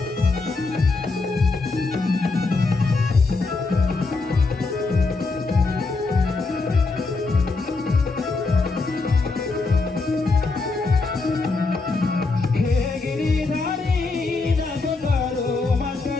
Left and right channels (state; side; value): quieter; right; 3.8 dB